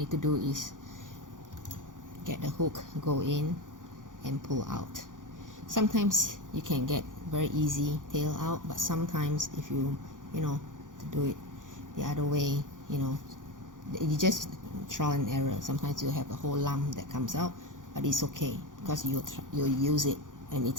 to do is get the hook, go in and pull out. Sometimes you can get very easy tail out, but sometimes if you to do it the other way, you just trial and error. Sometimes you have a whole lump that comes out, but it's okay because you'll use it and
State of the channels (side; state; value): left; late; 0.88 ms